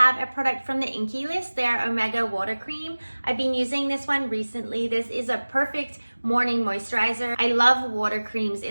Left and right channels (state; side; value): inverted; both; correlation -1.00